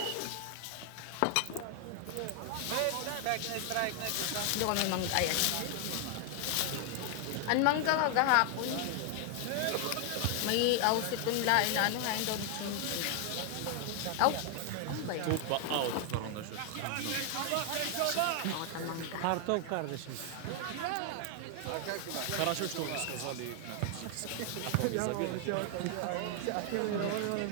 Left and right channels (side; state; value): both; different; correlation 0.00